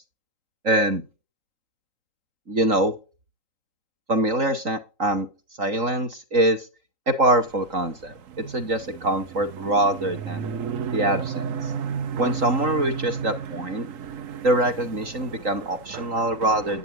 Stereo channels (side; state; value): left; late; 3.8 ms